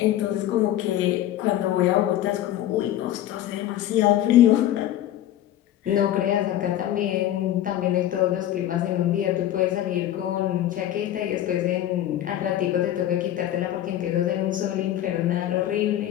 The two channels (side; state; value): right; quieter; 12.5 dB